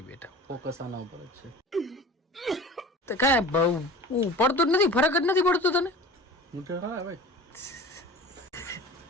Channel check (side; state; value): both; normal; correlation 0.39